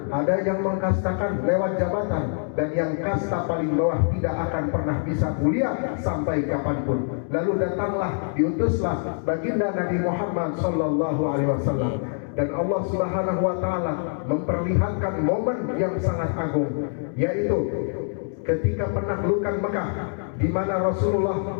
ada yang mengkastakan lewat jabatan, dan yang kasta paling bawah tidak akan pernah bisa mulia sampai kapanpun. Lalu datanglah, diutuslah baginda Nabi Muhammad SAW, dan Allah Subhanahu wa taala memperlihatkan momen yang sangat agung, yaitu ketika penaklukan Mekah, di mana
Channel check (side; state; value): right; silent; 62 dB below the other